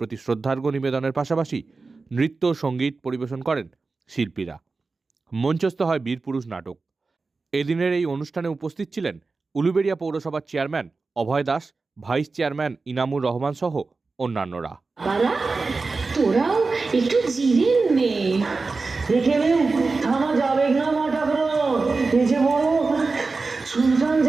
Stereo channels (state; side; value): quieter; left; 4.0 dB